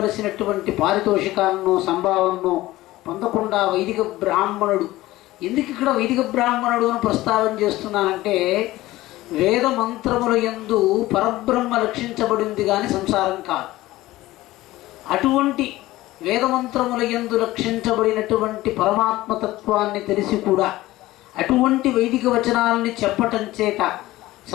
పారితోషికాలను సంభావనను పొందకుండా వైదిక బ్రాహ్మణుడు, ఎందుకు ఇక్కడ వైదిక బ్రాహ్మణుడు అని ప్రస్తావన చేస్తున్నానంటే, వేద మంత్రముల యందు పరబ్రహ్మ లక్షించబడింది కానీ సంసారం కాదు. అటువంటి వేదమంత్రముల యందు లక్షించబడినటువంటి పరమాత్మతత్వాన్ని తెలిసి కూడా అటువంటి వైదిక వచనాలని చెప్పటం చేత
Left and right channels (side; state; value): right; quieter; 17.2 dB